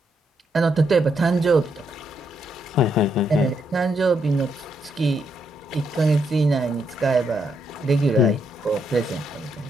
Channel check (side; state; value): both; normal; correlation 0.77